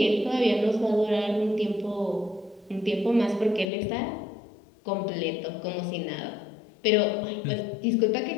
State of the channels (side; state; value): right; drops out; at 3.7 s